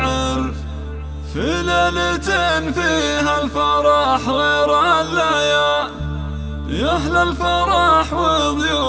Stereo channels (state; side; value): identical; both; correlation 1.00